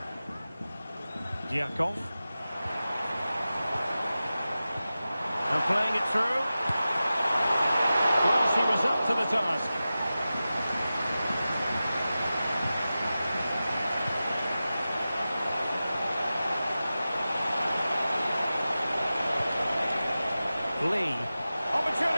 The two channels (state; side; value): inverted; both; correlation -0.95